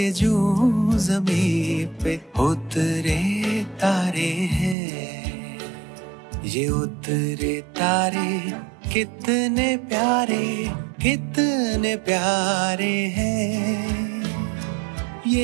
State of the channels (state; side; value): drops out; left; at 4.8 s